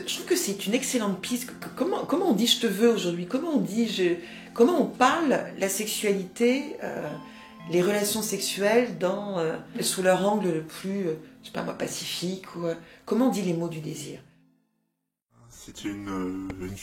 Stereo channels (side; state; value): both; identical; correlation 1.00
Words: trouve que c'est une excellente piste. Comment on dit « je te veux » aujourd'hui? Comment on parle la sexualité les relations sexuelles sous leur angle le plus, je sais pas moi, pacifique ou comment on dit les mots du désir? C'était une